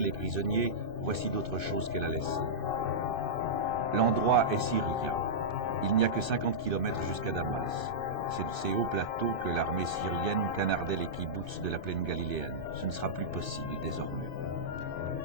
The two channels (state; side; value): late; left; 2.6 ms